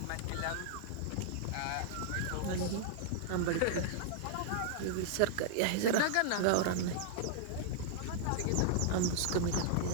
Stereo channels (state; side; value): different; both; correlation -0.01